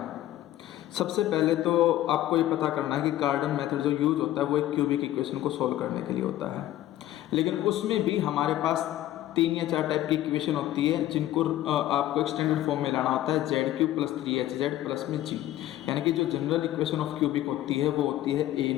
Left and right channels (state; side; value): quieter; right; 13.8 dB